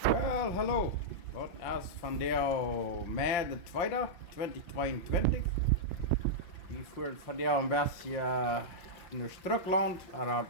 Well, hallo. Dat is van der mei de tweede, 2022. Die voert van der een beetje naar Schtrucklaunt, maar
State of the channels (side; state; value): right; late; 5.7 ms